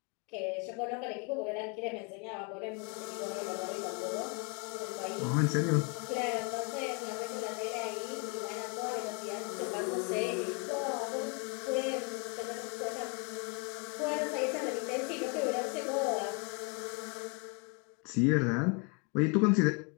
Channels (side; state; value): right; quieter; 33.5 dB